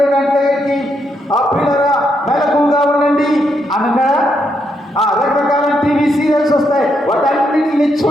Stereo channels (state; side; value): normal; both; correlation 0.79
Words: ఆ పిల్లరా మెలకువగా ఉండండి అనగా రకరకాల టీవీ సీరియల్స్ వస్తాయి. వాటన్నిటిని